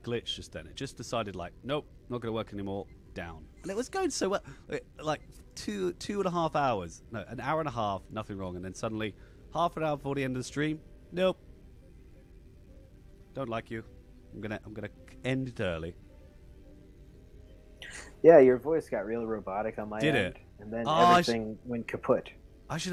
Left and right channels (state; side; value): identical; both; correlation 1.00